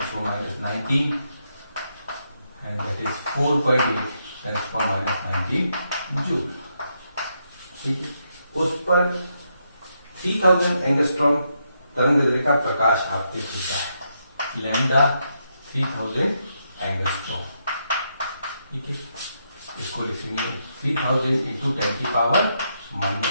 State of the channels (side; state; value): both; inverted; correlation -0.80